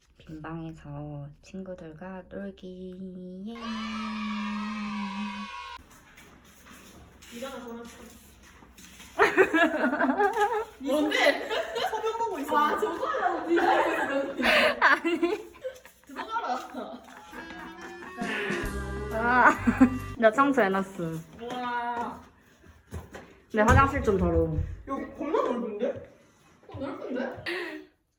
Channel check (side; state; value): both; identical; correlation 1.00